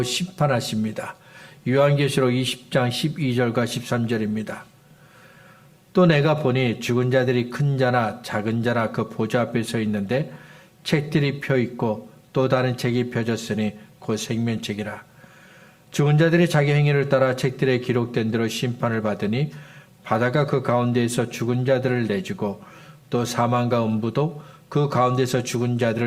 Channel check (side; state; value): both; identical; correlation 1.00